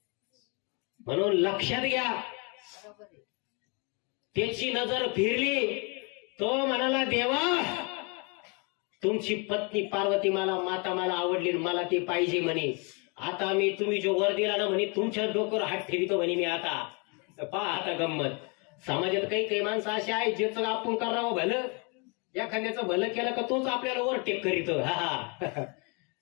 म्हणून लक्षात घ्या, त्याची नजर फिरली. तो म्हणाला, देवा तुमची पत्नी पार्वती माता मला आवडली, मला ती पाहिजे म्हणे. आता मी तुम्ही जो वर दिला ना म्हणे, तुमच्या डोक्यावर हात ठेवितो म्हणे मी. आता पहा आता गंमत. समाजात काही माणसं अशी आहेत, ज्याचं आपण करावं भलं, एखाद्याचं भलं केलं का तोच आपल्याला वर टेक करीतो.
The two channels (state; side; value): quieter; right; 32.8 dB